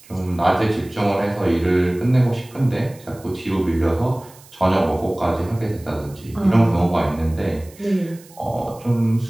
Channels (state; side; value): noise; right; hiss, 24 dB below the sound